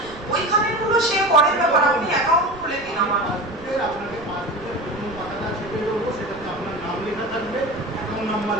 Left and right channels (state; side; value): noise; right; rumble, 18 dB below the sound